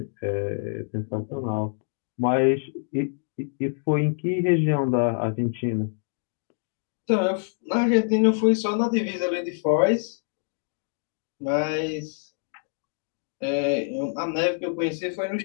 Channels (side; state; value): right; silent; digital silence